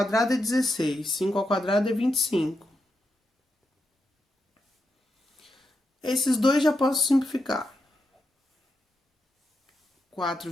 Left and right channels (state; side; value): normal; both; correlation 0.85